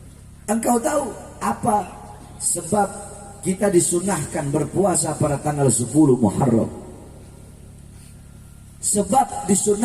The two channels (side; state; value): both; identical; correlation 1.00